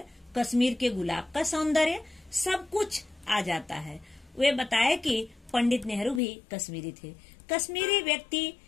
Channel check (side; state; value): right; drops out; at 6.2 s